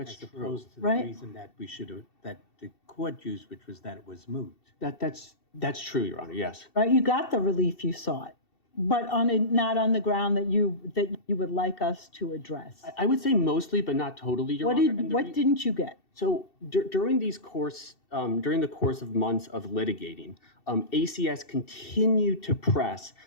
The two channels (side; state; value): right; late; 2.7 ms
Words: true. opposed to the Right. reason that that the court used, which was that it was moot. That's true, Your Honor. Yes. Right, you got the relief you sought. but not on the ground that you would like us to address. I would say mostly, but not totally, Your What Honor. And what didn't you get? So during the course of months of litigating, ACS continued to press